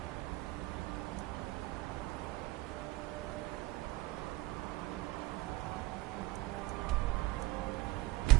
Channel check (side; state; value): left; quieter; 18.7 dB